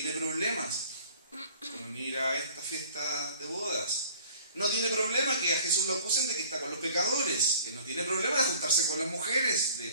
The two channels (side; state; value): both; inverted; correlation -0.50